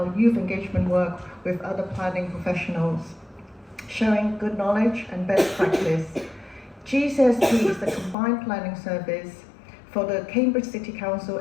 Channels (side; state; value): right; drops out; at 8.2 s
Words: youth engagement work with other planning professionals, sharing good knowledge and best practice. GCSP is the combined planning service for the Cambridge City Council